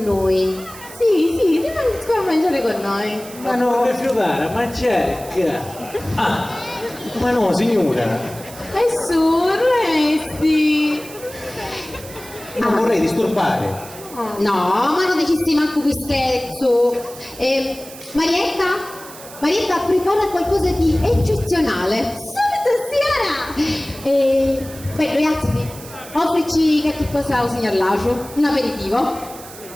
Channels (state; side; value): noise; right; hiss, 16 dB below the sound